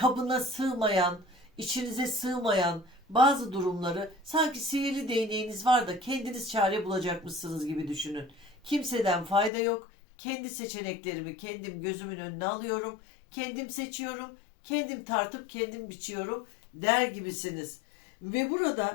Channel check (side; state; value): right; drops out; at 9.5 s